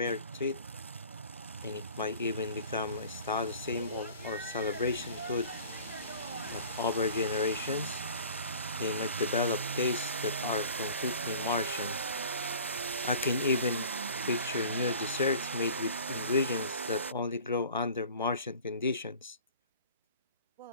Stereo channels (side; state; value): both; inverted; correlation -0.45